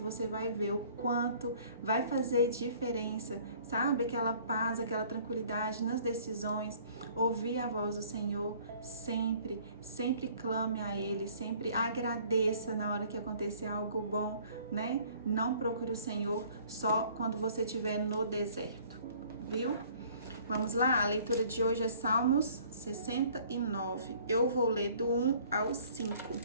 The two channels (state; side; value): inverted; both; correlation -0.55